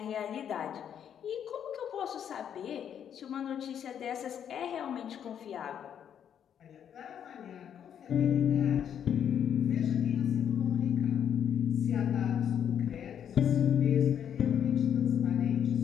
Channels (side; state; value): right; quieter; 8.9 dB